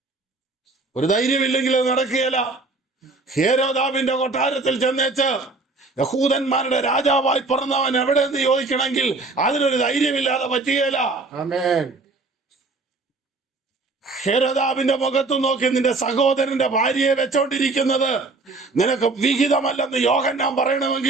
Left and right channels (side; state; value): left; quieter; 3.6 dB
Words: ഒരു ധൈര്യമില്ലെങ്കിൽ അത് നടക്കുകയില്ല. ഹേരോദാവിന്റെ കൊട്ടാരത്തിൽ ചെന്നേച്ച് യഹൂദന്മാരുടെ രാജാവായി പിറന്നവൻ എവിടെയെന്ന് ചോദിക്കണമെങ്കിൽ അതിനൊരു ധൈര്യമില്ലാതെ പറ്റുകയില്ല. ഹെരോദാവിന്റെ മുഖത്ത് നോക്കി നിന്റെ സഹോദരന്റെ ഭാര്യയെ വെച്ചോണ്ടിരിക്കുന്നത് നിനക്ക് വിഹിതമല്ലെന്ന് യോഹന്നാൻ